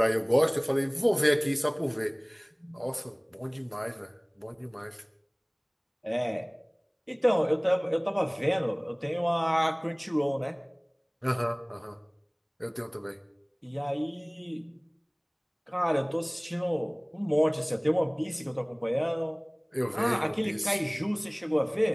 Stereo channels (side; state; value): both; identical; correlation 1.00